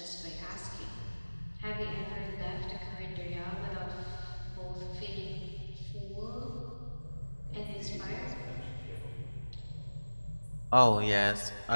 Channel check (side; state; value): both; inverted; correlation -1.00